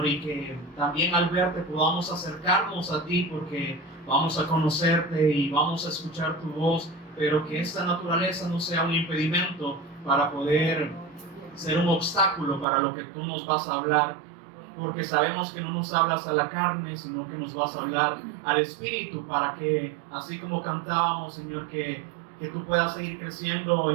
y que también al verte podamos acercarnos a ti, porque vamos a conocerte y vamos a escuchar tu voz, pero que esta naturaleza no sea un impedimento para poder ser un obstáculo para lo que tú nos vas a hablar, porque sabemos que no nos hablas a la carne, sino que nos vas a hablar al Espíritu, para que, así como cantábamos, Señor, que tú puedas seguir creciendo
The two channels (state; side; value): drops out; left; at 12.7 s